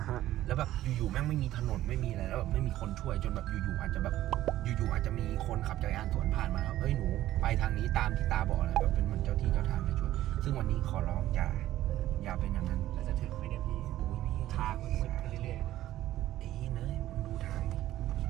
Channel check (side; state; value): left; quieter; 14.1 dB